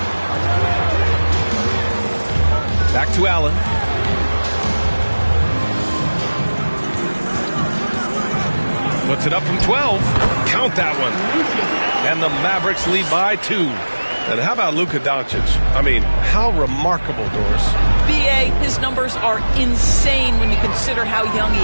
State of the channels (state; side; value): inverted; both; correlation -1.00